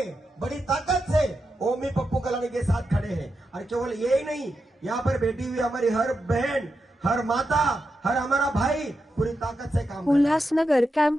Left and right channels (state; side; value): normal; both; correlation 0.87